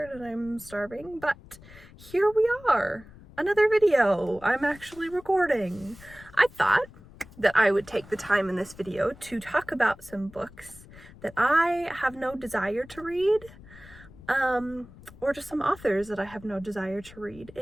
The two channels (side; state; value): left; noise; rumble, 20 dB below the sound